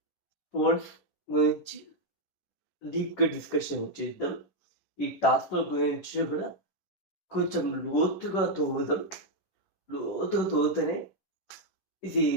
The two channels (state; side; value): late; right; 10 ms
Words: ఫోన్స్ గురించి డీప్‌గా డిస్కషన్ చేద్దాం. ఈ టాస్క్‌ల గురించి కూడా కొంచెం లోతుగా తవ్వుదాం. లోతుగా తవ్వుతేనే ఇది